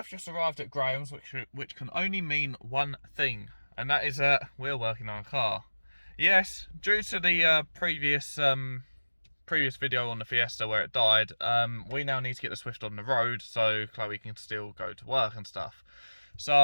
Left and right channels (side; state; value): both; inverted; correlation -1.00